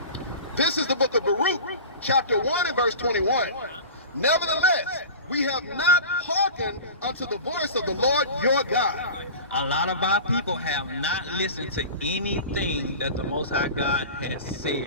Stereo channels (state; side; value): inverted; both; correlation -0.35